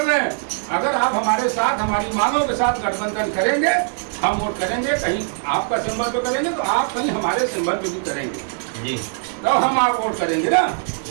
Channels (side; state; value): left; silent; 64 dB below the other